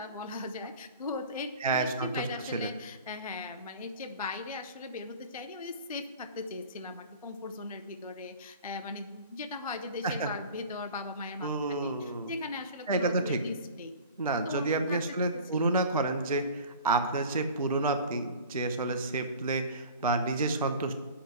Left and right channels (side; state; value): both; inverted; correlation -0.41